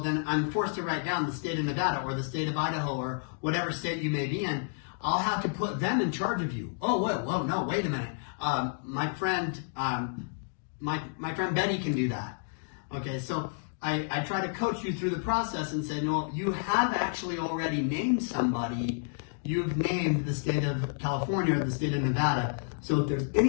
I'm forced to write down the state of Nevada or the state of Idaho or whatever state you may be in. I'll have to put them in charge of you. Oh, whoa, no, wait a minute. My friend Betty can do that. Okay, so I try to coach you through the process and say, no, you have actually already named somebody. You've named the state of California or the state of Nevada. So if there's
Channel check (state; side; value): silent; right; digital silence